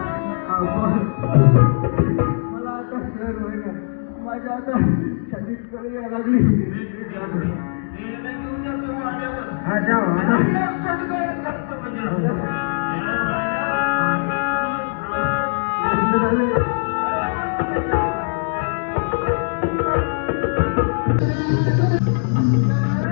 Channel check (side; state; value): right; silent; digital silence